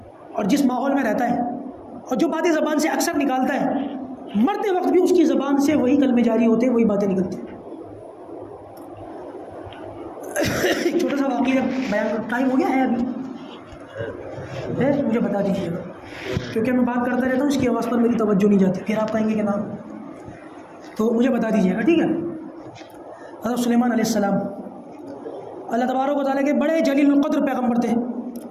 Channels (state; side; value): identical; both; correlation 1.00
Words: اور جس ماحول میں رہتا ہے اور جو باتیں زبان سے اکثر نکالتا ہے، مرتے وقت بھی اس کی زبان سے وہی کلمے جاری ہوتے ہیں، وہی باتیں نکلتی ہیں. ایک چھوٹا سا واقعہ بیان، ٹائم ہو گیا ہے ابھی ہے، مجھے بتا دیجیے گا کیونکہ میں بات کرتا رہتا ہوں، اس کی آواز پر میری توجہ نہیں جاتی، پھر آپ کہیں گے کہ نام، تو مجھے بتا دیجیے گا، ٹھیک ہے. حضرت سلیمان علیہ السلام اللہ تبارک و تعالیٰ کے بڑے جلیل القدر پیغمبر تھے.